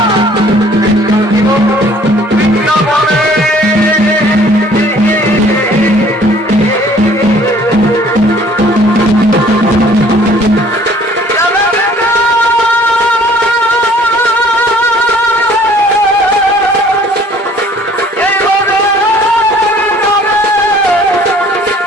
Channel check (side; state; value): both; normal; correlation 0.56